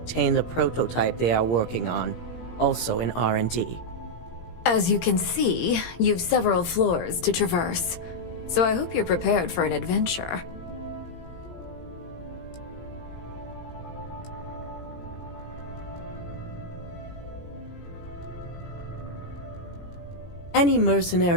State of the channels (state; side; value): late; right; 17 ms